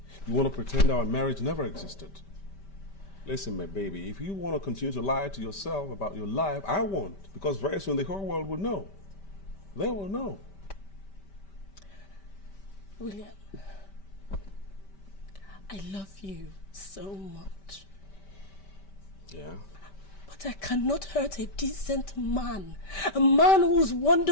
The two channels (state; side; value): late; right; 5.1 ms